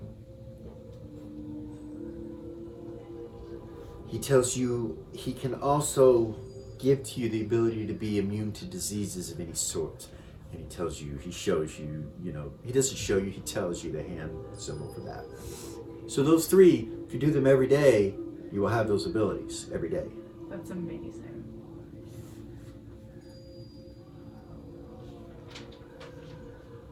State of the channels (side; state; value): both; identical; correlation 1.00